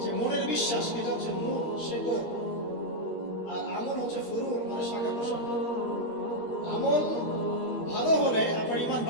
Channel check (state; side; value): late; right; 13 ms